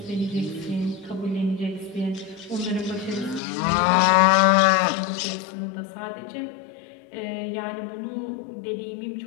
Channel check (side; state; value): right; drops out; at 3.4 s